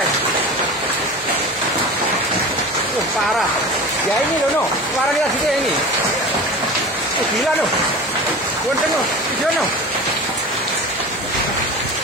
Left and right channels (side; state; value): both; normal; correlation 0.33